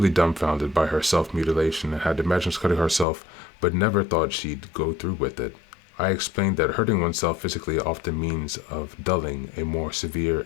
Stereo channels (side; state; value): right; drops out; at 3.1 s